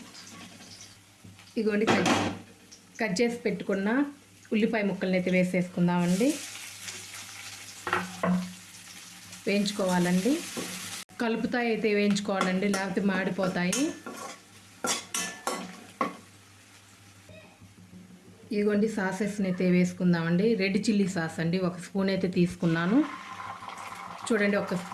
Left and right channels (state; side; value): identical; both; correlation 1.00